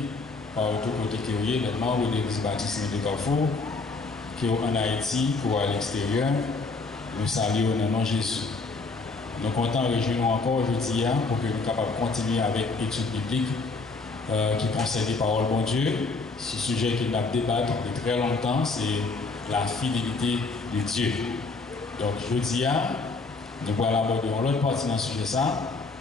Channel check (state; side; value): quieter; right; 3.9 dB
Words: par tout côté qui est, les membres de l'Église baptiste de Carrefour, qui sont en Haïti, qui sont à l'extérieur, nous saluons dans le nom de Jésus. Nous sommes contents de rejoindre encore aujourd'hui pour que nous soyons capables de continuer avec l'étude biblique qui concerne les paroles de bon Dieu. Ce sujet qu'il a débattu depuis très longtemps, c'est la fidélité de Dieu. Donc, aujourd'hui, nous allons aborder l'autre partie dans ce sujet,